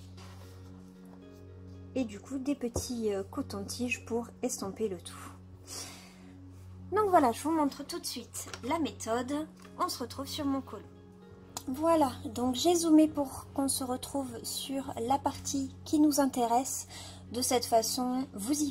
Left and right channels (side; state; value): both; identical; correlation 1.00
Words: et du coup des petits cotons-tiges pour estomper le tout. Donc voilà, je vous montre tout de suite la méthode. On se retrouve sur mon colo. Voilà, donc j'ai zoomé pour qu'on se retrouve sur la partie qui nous intéresse. De cette façon, vous y